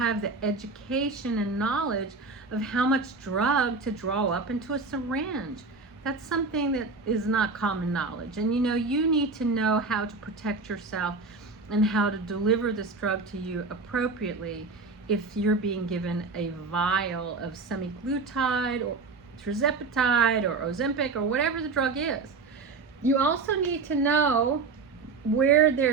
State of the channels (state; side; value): quieter; left; 4.2 dB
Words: the education and knowledge of how much drug to draw up into a syringe. That's something that is not common knowledge. And you need to know how to protect yourself and how to deliver this drug to you appropriately if you're being given a vial of semaglutide or tirzepatide or Ozempic or whatever the drug is. You also need to know where